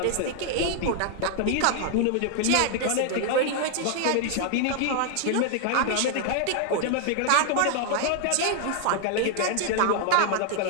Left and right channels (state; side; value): different; both; correlation 0.00